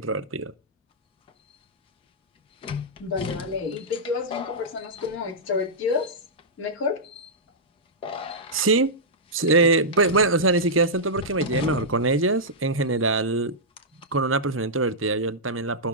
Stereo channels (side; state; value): both; normal; correlation -0.10